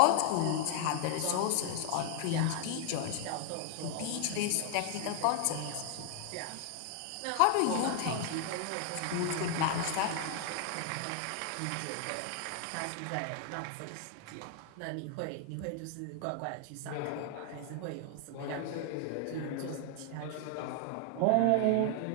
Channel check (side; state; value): both; different; correlation 0.00